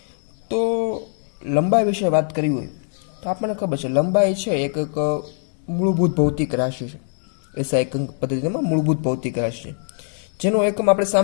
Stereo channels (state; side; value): silent; right; 64 dB below the other